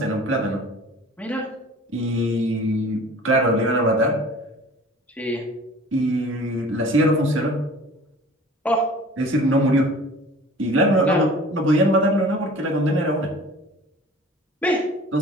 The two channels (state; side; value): normal; both; correlation 0.45